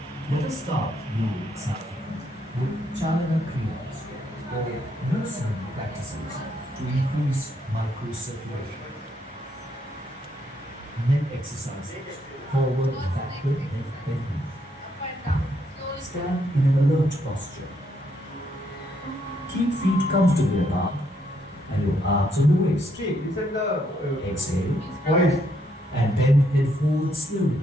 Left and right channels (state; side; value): normal; both; correlation 0.74